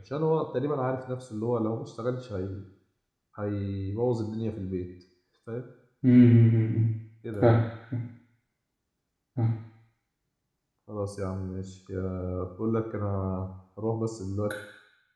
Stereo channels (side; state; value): both; identical; correlation 1.00